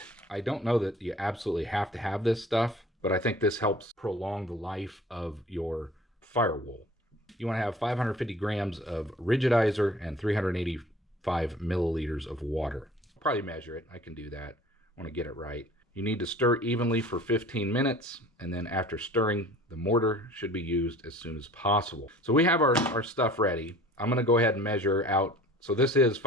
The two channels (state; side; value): normal; both; correlation 0.46